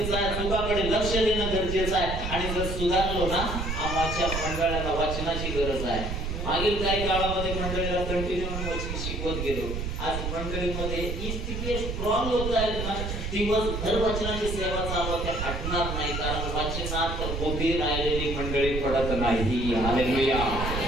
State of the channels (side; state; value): right; noise; rumble, 4 dB below the sound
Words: आहे, चुकाकडे लक्ष देणं गरजेचं आहे. आणि जर सुधारलो ना, आमच्या मंडळाला वाचनाची गरज आहे. मागील काही काळामध्ये मंडळीला कंटिन्यू वचन शिकवत गेलो. आज मंडळीमध्ये ही स्थिती स्ट्रॉंग होत आहे ना, दिवसभर वचनाची सेवा चालू त्या हटणार नाही, कारण वाचनात उभी राहिलेली मंडळी पडत नाही. हालेलुया.